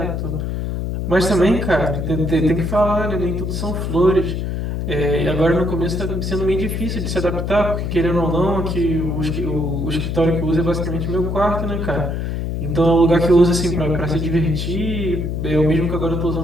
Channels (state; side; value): noise; left; hum, 2 dB below the sound